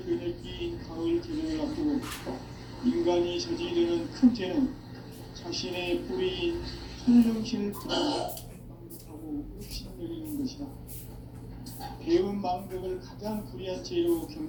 가을 개벽을 앞두고 인간이 저지르는 큰 죄는 자신의 뿌리인 설령신을 망극하고 읍신여기는 것이다. 배운 망덕을 가장 불의한 죄로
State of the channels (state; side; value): identical; both; correlation 1.00